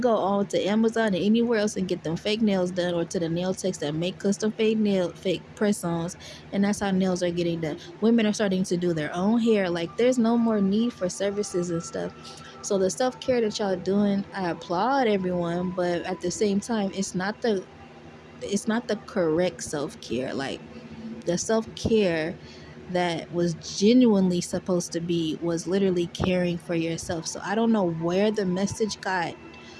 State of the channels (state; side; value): identical; both; correlation 1.00